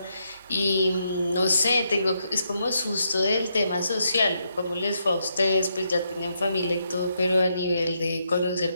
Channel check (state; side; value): inverted; both; correlation -0.79